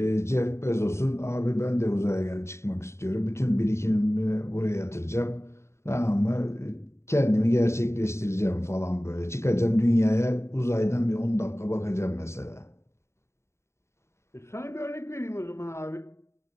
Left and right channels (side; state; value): right; late; 0.13 ms